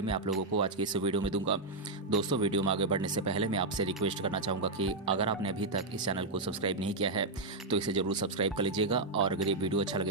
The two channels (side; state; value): left; quieter; 3.2 dB